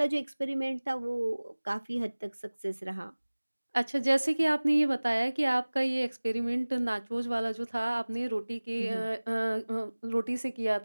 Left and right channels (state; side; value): inverted; both; correlation -1.00